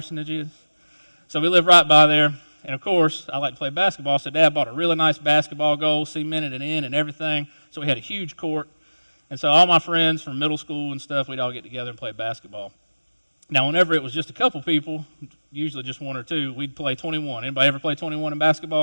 is? So we lived right by there, and of course, I like to play basketball, so Dad bought a really nice basketball goal, cemented it in and everything, so we had a huge court. And so all my friends from middle school and stuff, we'd all get together and play basketball. Now, whenever it was just a couple people, usually just one or two, we'd play 21. Anybody ever play 21 in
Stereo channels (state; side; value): inverted; both; correlation -1.00